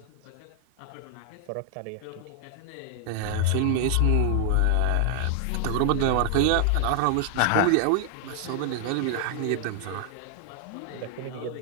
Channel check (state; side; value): different; both; correlation 0.00